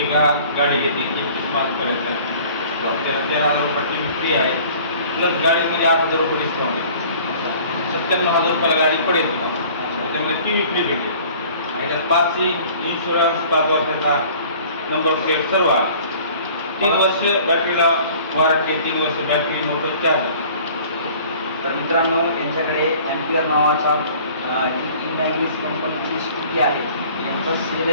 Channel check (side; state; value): both; inverted; correlation -0.49